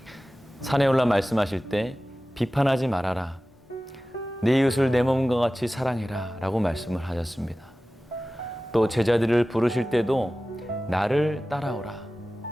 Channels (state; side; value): normal; both; correlation 0.96